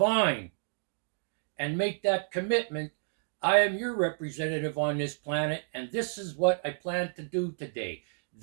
and make that commitment. I am your representative on this planet, and this is what I plan to do today.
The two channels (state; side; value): silent; left; digital silence